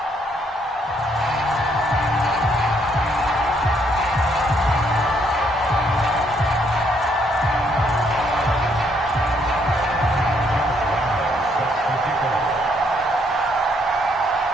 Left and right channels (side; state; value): both; normal; correlation 0.70